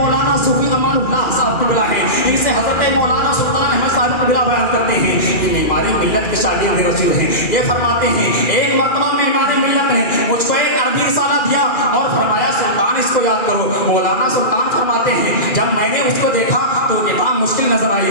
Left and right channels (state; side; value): late; right; 2.4 ms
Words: صوفی امان اللہ صاحب قبلہ ہیں، ان سے حضرت مولانا سلطان احمد صاحب قبلہ بیان کرتے ہیں کہ ہمارے ملت کے شاگرد رسول ہیں. یہ فرماتے ہیں ایک مرتبہ میں ہمارے ملت نے مجھ کو ایک عربی رسالہ دیا اور فرمایا سلطان اس کو یاد کرو. مولانا سلطان فرماتے ہیں جب میں نے اس کو دیکھا تو کتاب مشکل نظر آئی.